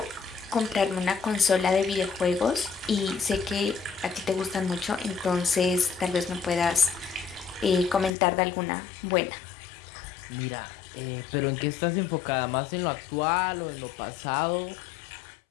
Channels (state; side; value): drops out; right; at 8.1 s